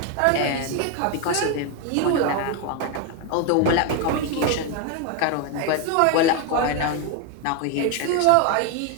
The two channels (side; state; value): both; different; correlation 0.02